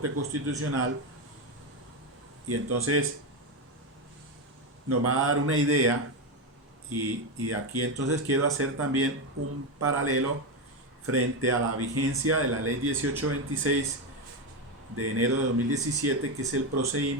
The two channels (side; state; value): both; normal; correlation 0.11